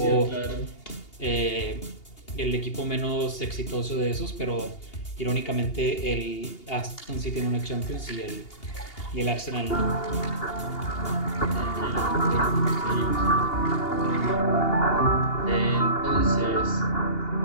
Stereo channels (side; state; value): right; late; 2.8 ms